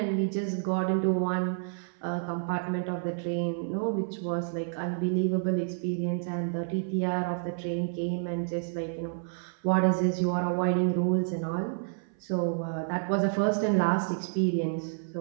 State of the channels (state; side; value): silent; left; 58 dB below the other